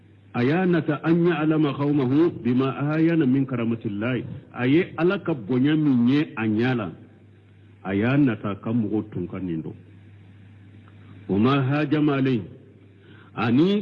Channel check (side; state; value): both; identical; correlation 1.00